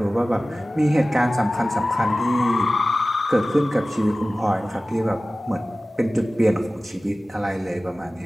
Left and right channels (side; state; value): both; normal; correlation 0.97